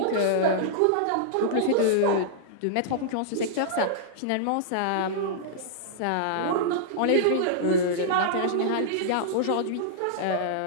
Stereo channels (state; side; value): different; both; correlation -0.02